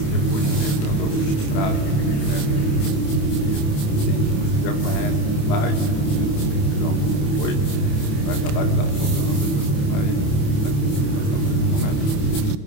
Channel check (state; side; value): late; right; 28 ms